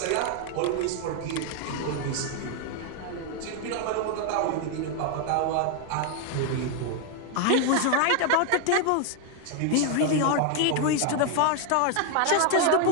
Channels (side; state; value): both; different; correlation 0.00